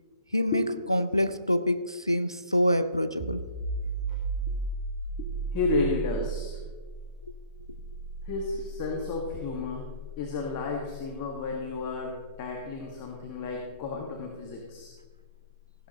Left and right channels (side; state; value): both; inverted; correlation -0.57